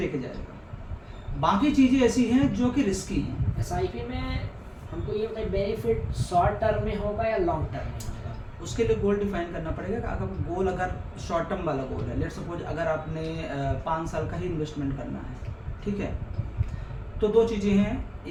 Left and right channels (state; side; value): identical; both; correlation 1.00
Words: जाएगा। बाकी चीज़ें ऐसी हैं जो कि रिस्की हैं। एसआईपी में हमको ये बताइए बेनिफिट शॉर्ट टर्म में होगा या लॉन्ग टर्म में होगा? उसके लिए गोल डिफाइन करना पड़ेगा कि अगर गोल अगर शॉर्ट टर्म वाला गोल है, लेट सपोज अगर आपने 5 साल का ही इन्वेस्टमेंट करना है, ठीक है, तो दो चीज़ें हैं